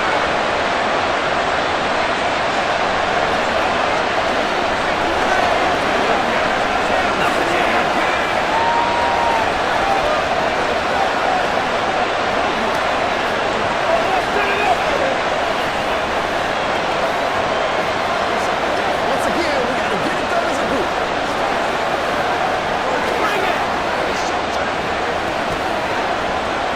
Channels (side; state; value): both; identical; correlation 1.00